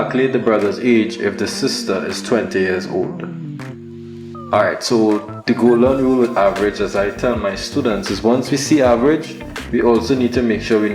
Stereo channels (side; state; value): both; identical; correlation 1.00